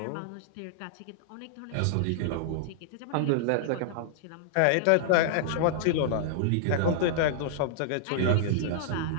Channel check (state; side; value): different; both; correlation -0.01